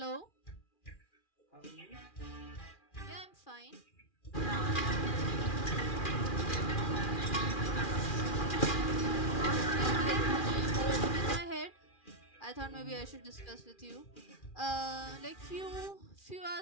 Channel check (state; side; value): late; right; 2.4 ms